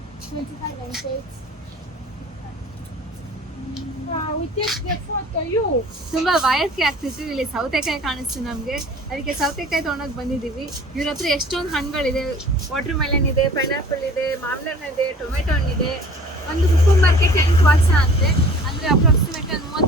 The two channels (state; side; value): normal; both; correlation 0.47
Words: 25 pancakes. We take the photo, you. ತುಂಬಾ ವಯಸ್ಸಿಗೆ ಆಗ್ತಿತ್ತು. ಇಲ್ಲಿ ಸೌತೆಕಾಯಿ ಕಾಣಿಸ್ತು ನಮ್ಗೆ, ಅದಕ್ಕೆ ಸೌತೆಕಾಯಿ ತಗೊಂಡೋಗಿ ಬಂದಿದೀವಿ. ಇವ್ರ ಹತ್ರ ಎಷ್ಟೊಂದು ಹಣ್ಣುಗಳಿದೆ. ವಾಟರ್ ಮೆಲನ್ ಇದೆ, ಪೈನಾಪಲ್ ಇದೆ, ಮಾವಿನ ಹಣ್ಣು ಇದೆ, ಟೊಮೆಟೊ ಹಣ್ಣಿದೆ. ಒಂದು ಸೂಪರ್ ಮಾರ್ಕೆಟ್ 8 ವರ್ಷ ಅಂತೆ, ಅಂದ್ರೆ ಅಪ್ರಾಕ್ಸಿಮೇಟ್